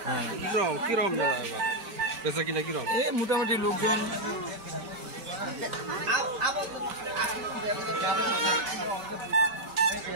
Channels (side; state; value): left; late; 5.2 ms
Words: হ্যাঁ। কিরকম মেলা এবার বেচা কিনা কিরকম? এই মোটামুটি লোকজন